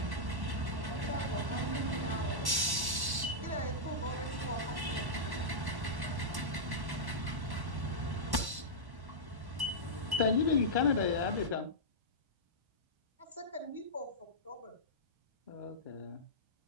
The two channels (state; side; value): late; left; 1.1 ms